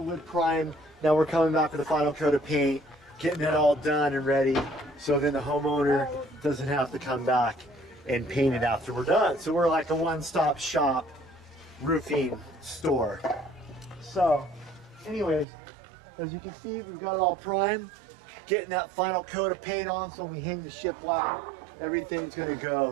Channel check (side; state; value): left; drops out; at 15.5 s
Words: wood primed. Now we're coming back with the final coat of paint, getting it all done and ready, so then the homeowner doesn't have to come back and paint it after we're done. So we're like a one-stop shop roofing store. So, anyways, as you can see, we've got it all primed, getting that final coat of paint on, so when we hang the shiplap, everything's gonna